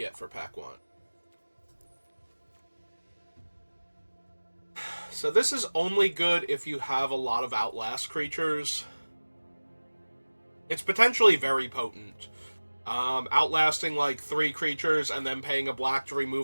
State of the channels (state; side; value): inverted; both; correlation -1.00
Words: for pack 1? So this is only good if you have a lot of Outlast creatures. It's potentially very potent. Outlasting like 3 creatures and then paying a black to